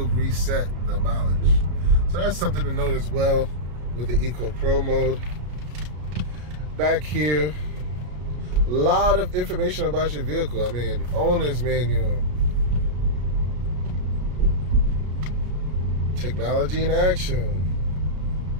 reset the mileage. So that's something to note as well with the Eco Pro mode. Back here, a lot of information about your vehicle. I mean, owner's manual, technology in action.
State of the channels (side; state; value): left; late; 33 ms